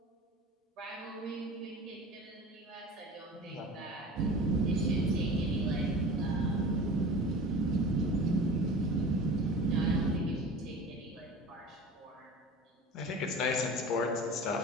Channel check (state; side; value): normal; both; correlation 0.37